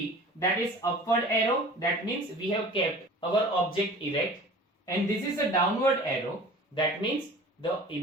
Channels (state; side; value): normal; both; correlation 0.42